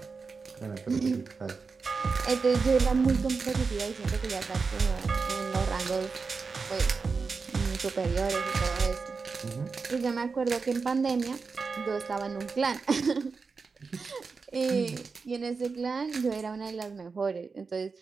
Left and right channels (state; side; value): quieter; left; 4.7 dB